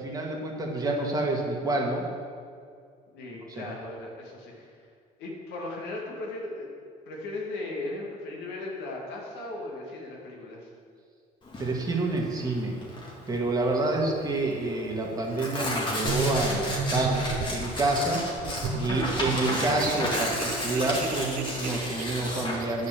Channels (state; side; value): normal; both; correlation 0.45